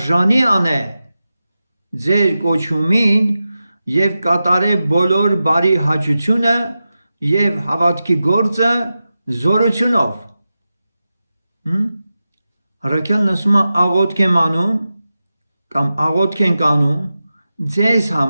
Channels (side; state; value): both; inverted; correlation -0.93